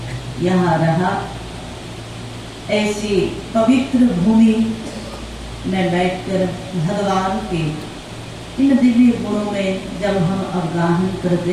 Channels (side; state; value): both; identical; correlation 1.00